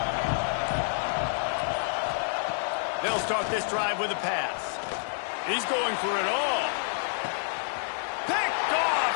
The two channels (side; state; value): right; silent; 59 dB below the other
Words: They'll start this drive with a pass. He's going for it all. Picked off,